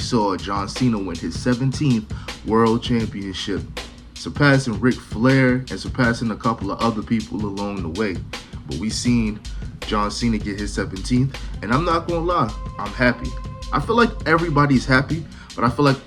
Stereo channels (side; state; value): both; identical; correlation 1.00